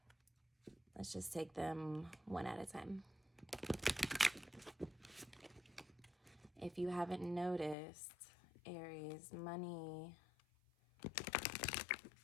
Let's just take them one at a time. If you haven't noticed, Aries, money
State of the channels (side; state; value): right; drops out; at 7.8 s